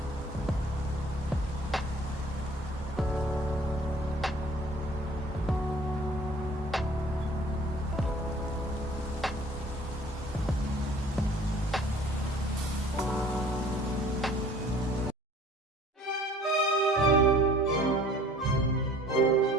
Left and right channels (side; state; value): both; normal; correlation 0.51